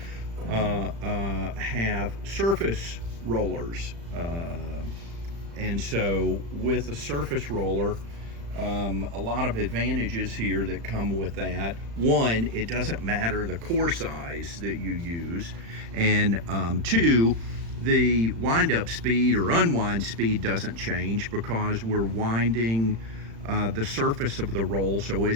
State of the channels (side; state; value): left; late; 35 ms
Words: have surface rollers, and so with a surface roller, a lot of advantages here that come with that. One, it doesn't matter the core size that you use, and two, the wind-up speed or unwind speed doesn't change because we're winding the surface of the roll, so